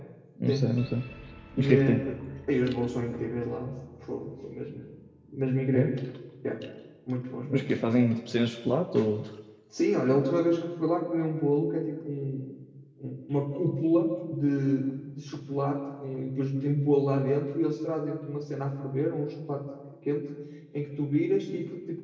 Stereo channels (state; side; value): identical; both; correlation 1.00